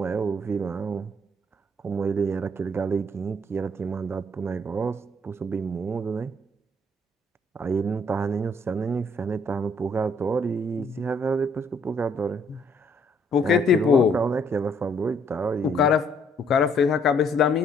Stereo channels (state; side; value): normal; both; correlation 0.66